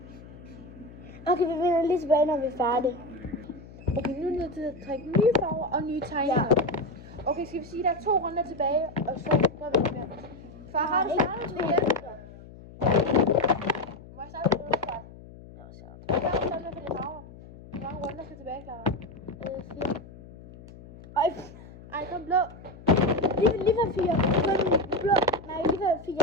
Okay, vi vender lige tilbage, når vi er færdige. Okay, nu er det nødt til at trække nye farver og nye tegninger. Okay, skal vi sige, at der er 2 runder tilbage, og så gør vi det mere. Far, har du startet med igen? Må jeg starte med det? Hvad har du startet med for de farver? Hvor mange runder skal tilbage, Clara? 4. Ej, kom blå. Lige for 4. Kun blå. Nej, lige for 4.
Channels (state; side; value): noise; left; hum, 18 dB below the sound